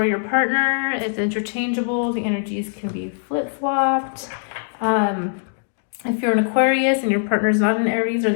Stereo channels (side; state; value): right; silent; digital silence